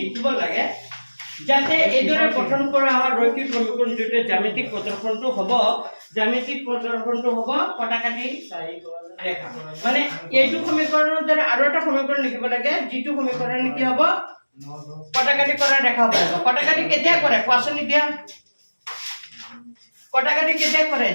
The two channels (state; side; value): inverted; both; correlation -1.00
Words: লাগে যাতে এদৰে গঠন কৰা হয় ৰৈখিক সমীকৰণ দুটা জ্যামিতিক প্ৰদৰ্শনটো হ'ব কটাকাটি ৰেখা মানে এইটো সমীকৰণৰ দ্বাৰা আৰু এটা সমীকৰণ লিখিব লাগে যিটো সমীকৰণ কি হ'ব কটাকাটি কৰা ৰেখা হ'ব কটাকাটি কেতিয়া কৰে কোৱাচোন এতিয়া কটাকাটি কেতিয়া কৰে